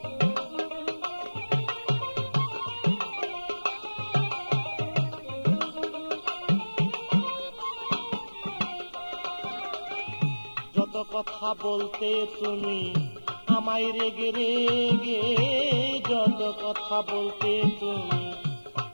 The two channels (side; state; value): both; inverted; correlation -1.00